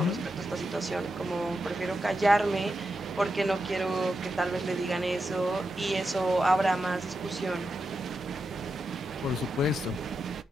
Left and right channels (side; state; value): both; normal; correlation 0.87